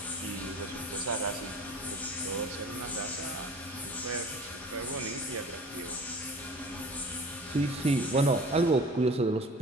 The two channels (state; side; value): normal; both; correlation 0.43